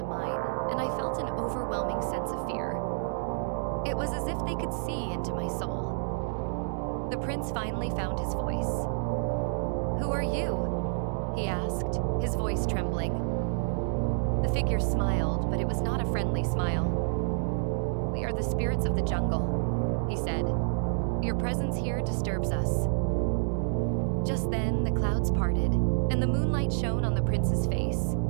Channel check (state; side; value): silent; left; digital silence